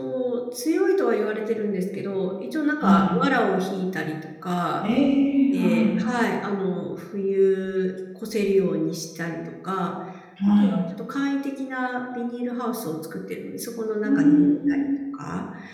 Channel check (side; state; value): both; identical; correlation 1.00